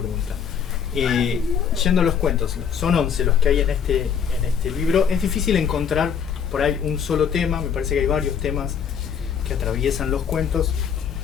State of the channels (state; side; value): quieter; right; 7.4 dB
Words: Yendo a los cuentos, son 11 los que hay en este libro. Es difícil encontrar por ahí un solo tema, me parece que hay varios temas que atraviesan los cuentos,